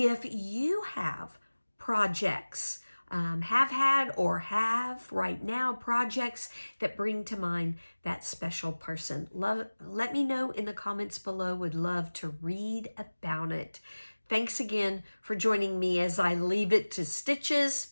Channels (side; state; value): both; inverted; correlation -1.00